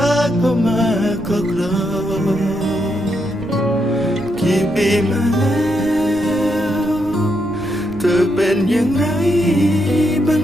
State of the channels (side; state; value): right; noise; rumble, 16 dB below the sound